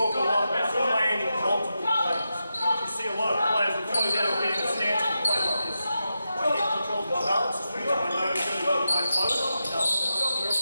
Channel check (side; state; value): both; inverted; correlation -0.89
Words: a lot about landing multiple planes. You see a lot of players that close out of being in a stance and play like this. My head controls my balance, swings my nose really well with my toes.